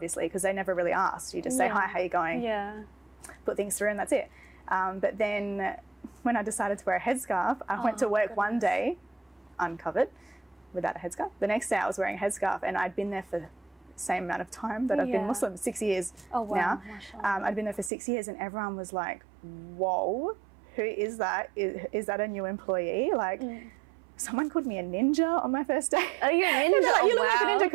because they never really asked. You just say, hi, how you going? Put things through and that's it. But then when I decided to wear a headscarf, I went to work one day uncovered without a headscarf. The next day I was wearing a headscarf, and I'd been there for the same amount of time that I've been Muslim, 6 years now. I'd been there for 6 years, and everyone was like, whoa, who is that? Is that a new employee? Like, someone called me a ninja on my first day. Are you a ninja? Like, you look like a ninja,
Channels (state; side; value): drops out; left; at 17.9 s